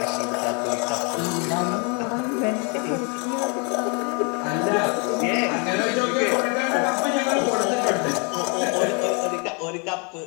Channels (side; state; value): right; quieter; 34.9 dB